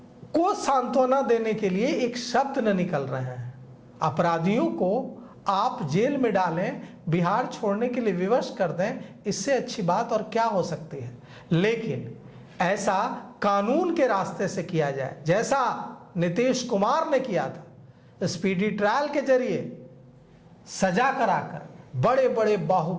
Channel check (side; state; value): both; identical; correlation 1.00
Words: सांत्वना देने के लिए एक शब्द न निकल रहे हैं। अपराधियों को आप जेल में डालें, बिहार छोड़ने के लिए विवश कर दें, इससे अच्छी बात और क्या हो सकती है? लेकिन ऐसा कानून के रास्ते से किया जाए, जैसा नीतीश कुमार ने किया था, स्पीडी ट्रायल के जरिए सजा कराकर बड़े बड़े